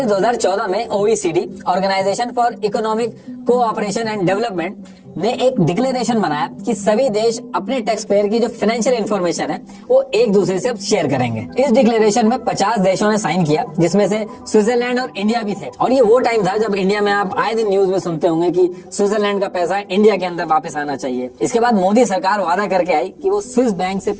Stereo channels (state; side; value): identical; both; correlation 1.00